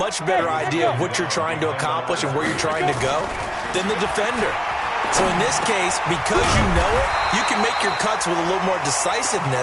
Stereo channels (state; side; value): identical; both; correlation 1.00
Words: better idea of what you're trying to accomplish and where you're trying to go than the defender. So in this case, because you know it, you can make your cuts with a little more